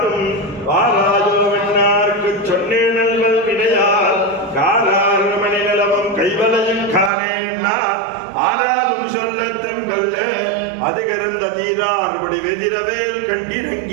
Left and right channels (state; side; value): drops out; left; at 7.1 s